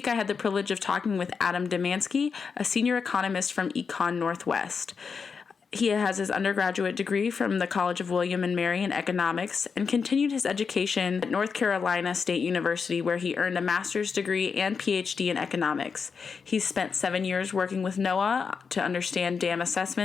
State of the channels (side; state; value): right; quieter; 5.6 dB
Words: I had the privilege of talking with Adam Domanski, a senior economist from ECONorthwest. He has his undergraduate degree from the College of William and Mary in economics and continued his education at North Carolina State University, where he earned a master's degree and PhD in economics. He's spent 7 years working with NOAA to understand dam